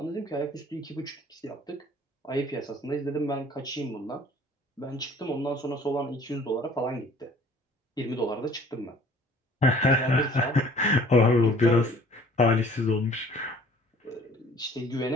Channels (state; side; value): normal; both; correlation 0.53